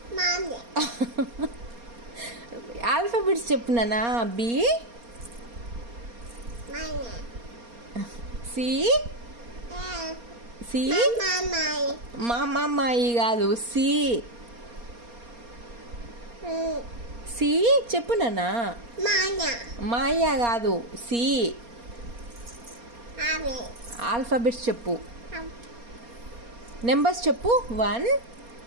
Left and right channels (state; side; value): late; left; 4.3 ms